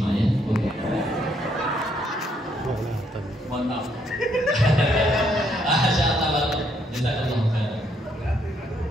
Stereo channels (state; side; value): normal; both; correlation 0.71